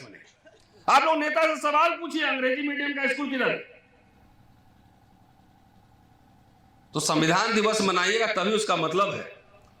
में नहीं। आप लोग नेता से सवाल पूछिए, अंग्रेजी मीडियम का स्कूल किधर है? तो संविधान दिवस मनाइएगा तभी उसका मतलब है।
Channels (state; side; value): identical; both; correlation 1.00